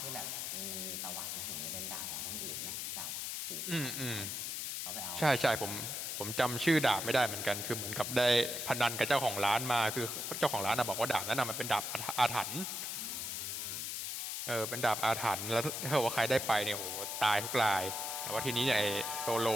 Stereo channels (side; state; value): left; noise; hiss, 3 dB below the sound